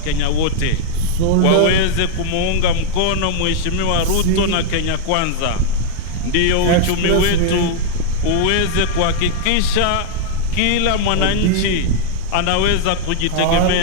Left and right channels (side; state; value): both; different; correlation 0.00